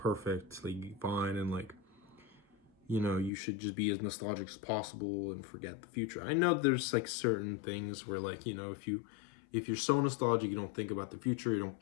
like fine, and like, you know, you should just be as nostalgic as possible and forget the future. I know there's like certain things where like, you know, if you're so nostalgic, you don't think about the future, you don't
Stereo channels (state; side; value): drops out; right; at 3.3 s